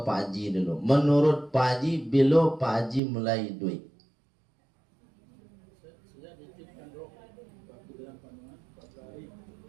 Pak Haji dulu. Menurut Pak Haji, bila Pak Haji mulai duit?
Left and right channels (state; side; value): drops out; left; at 3.0 s